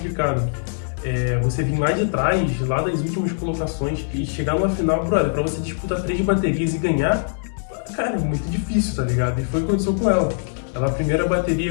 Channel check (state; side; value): silent; right; digital silence